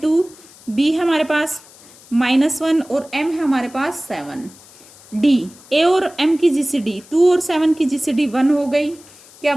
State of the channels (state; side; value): noise; left; hiss, 23 dB below the sound